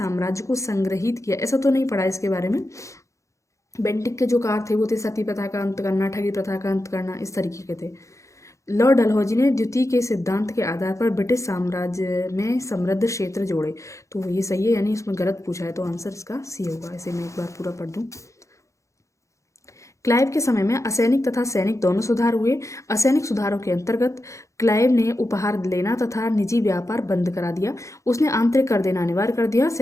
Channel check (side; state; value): right; late; 0.15 ms